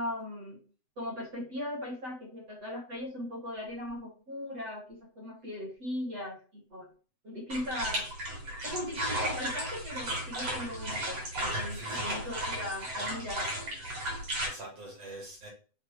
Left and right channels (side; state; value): left; late; 7.9 ms